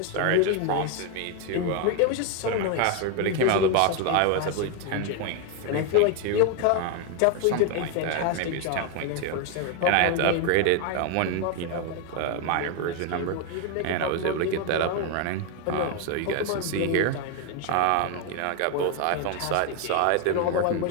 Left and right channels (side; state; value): both; different; correlation 0.01